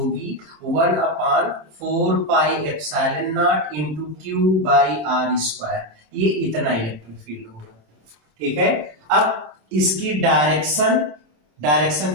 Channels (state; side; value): late; left; 26 ms